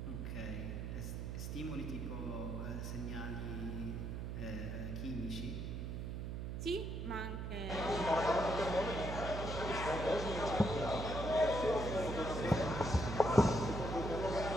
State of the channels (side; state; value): right; noise; hum, 4 dB below the sound